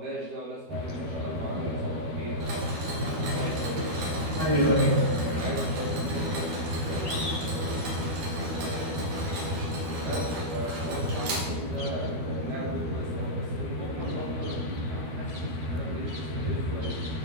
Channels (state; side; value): late; left; 12 ms